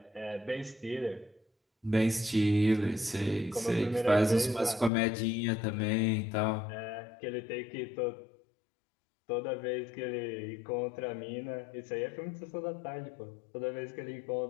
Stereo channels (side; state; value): right; drops out; at 4.9 s